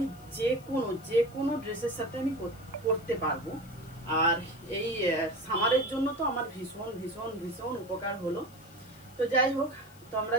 যে কোনো ড্রেসের সাথে আমি পরতে পারবো। আর এই সামারের জন্য তো আমার ভীষণ ভীষণ ভীষণ উপকার হলো। তো যাই হোক, তোমরা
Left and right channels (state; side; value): noise; left; hiss, 25 dB below the sound